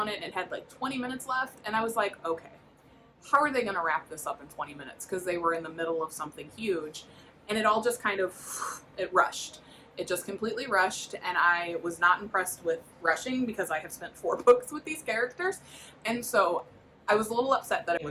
it, and it had like 20 minutes left, and I was like, okay, how are they going to wrap this up in 20 minutes? Because they were in the middle of something huge, and it all just kind of, it rushed. It just completely rushed, and I was not impressed with rushing because I have spent 4 books with these characters, and so I was a little upset that it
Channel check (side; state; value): both; identical; correlation 1.00